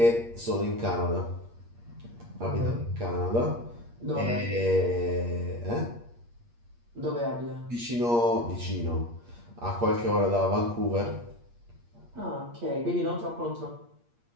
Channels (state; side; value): late; left; 8.5 ms